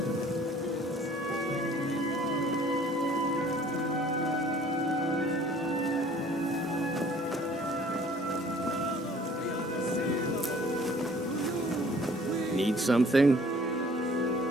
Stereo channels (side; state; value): both; normal; correlation 0.54